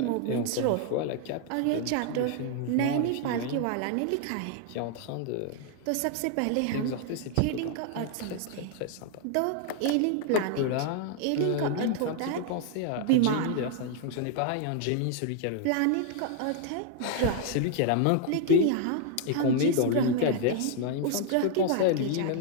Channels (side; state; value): both; different; correlation 0.00